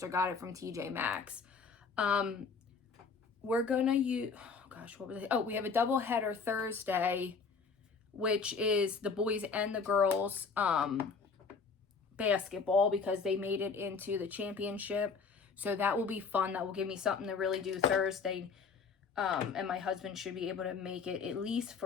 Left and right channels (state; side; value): quieter; right; 5.2 dB